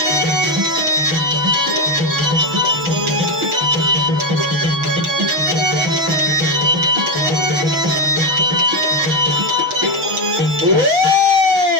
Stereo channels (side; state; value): left; late; 6.3 ms